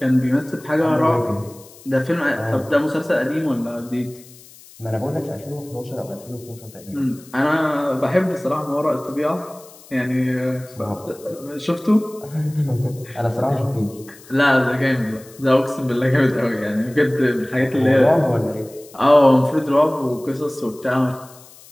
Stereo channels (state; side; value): noise; left; hiss, 22 dB below the sound